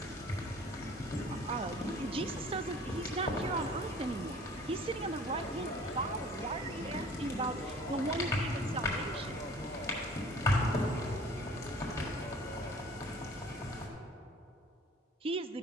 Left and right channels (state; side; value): normal; both; correlation 0.49